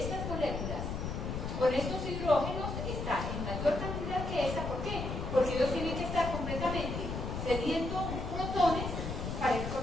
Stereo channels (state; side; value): noise; left; rumble, 4 dB below the sound